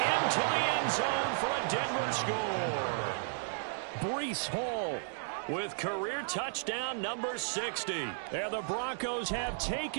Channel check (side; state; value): left; silent; digital silence